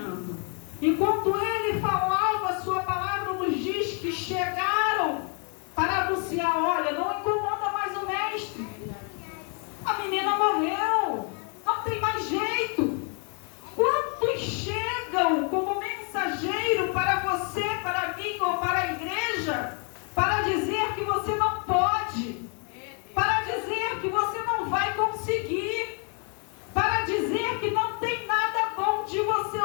Enquanto ele falava, a sua palavra nos diz que chegaram para anunciar: olha, não incomoda mais o mestre. A menina morreu, não tem mais jeito. Quantos chegam como mensageiro para você, para mim ou para a igreja, para dizer que você não pode, para dizer que você não vai conseguir, para dizer que não tem nada bom de você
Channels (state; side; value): quieter; right; 38.9 dB